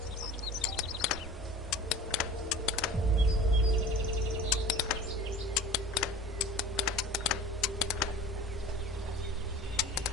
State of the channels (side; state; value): both; normal; correlation 0.41